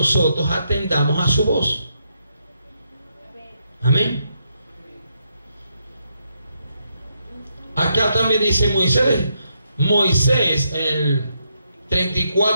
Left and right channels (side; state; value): both; inverted; correlation -0.79